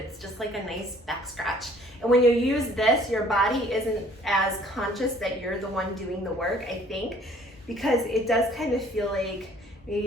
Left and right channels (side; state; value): both; normal; correlation 0.57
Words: just like a nice back scratch. And when you use this, your body isn't as conscious that you're the one doing the work, I think, because it does kind of feel like